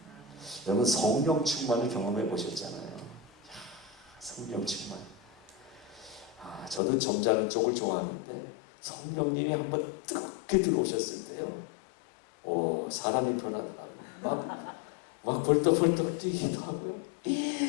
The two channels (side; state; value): right; drops out; at 6.8 s